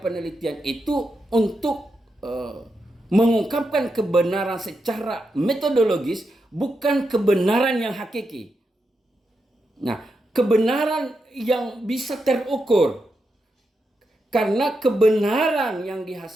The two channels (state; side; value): normal; both; correlation 0.85